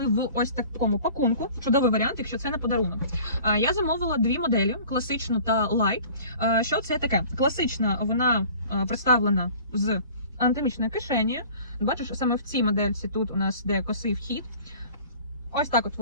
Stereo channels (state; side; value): inverted; both; correlation -0.46